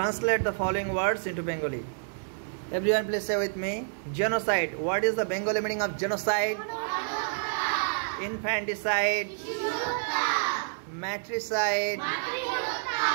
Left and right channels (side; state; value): left; silent; 59 dB below the other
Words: the following words into Bengali. Everyone please say with me. Genocide. What is the Bengali meaning of genocide? Infanticide. Matricide.